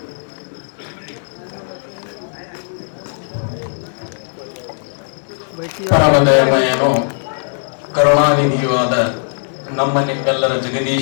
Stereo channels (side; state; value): right; silent; 64 dB below the other